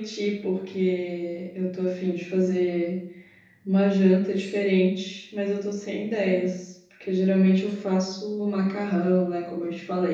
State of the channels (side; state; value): both; identical; correlation 1.00